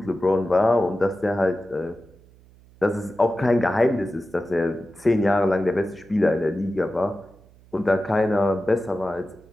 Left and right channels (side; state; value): right; noise; hum, 27 dB below the sound